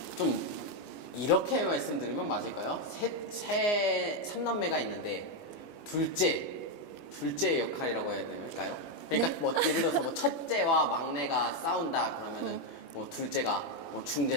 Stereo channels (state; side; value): late; right; 21 ms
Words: 좀 이렇게 말씀드리면 맞을까요? 삼남매가 있는데 둘째 역할이라고 해야 될까요? 그러니까 뭐 예를 들어서 뭐 첫째와 막내가 싸운다 그러면은 뭐 둘째가 뭐